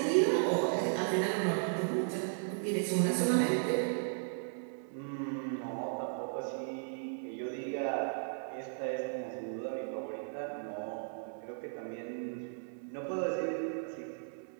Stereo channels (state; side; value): silent; left; 54 dB below the other